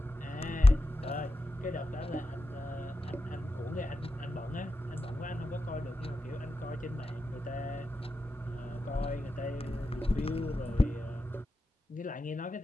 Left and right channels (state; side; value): normal; both; correlation 0.90